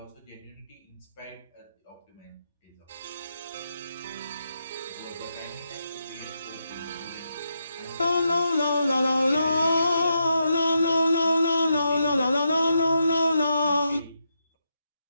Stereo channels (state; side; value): inverted; both; correlation -0.83